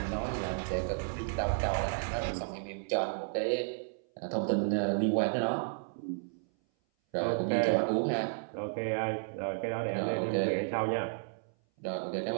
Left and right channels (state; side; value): silent; left; 56 dB below the other